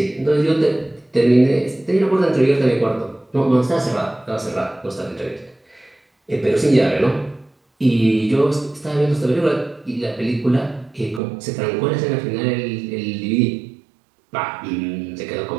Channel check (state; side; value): drops out; left; at 11.2 s